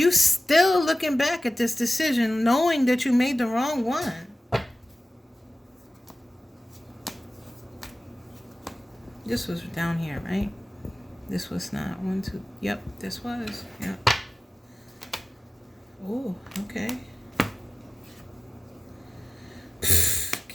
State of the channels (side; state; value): both; normal; correlation 0.97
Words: still looking back at this decision, knowing that you made the wrong one. This was down here, right? This was not one, two. Yep, this was. Yep. Oh, okay.